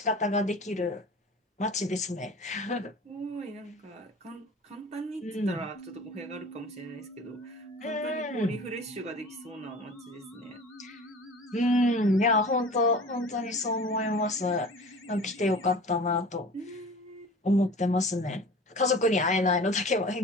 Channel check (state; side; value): normal; both; correlation 0.40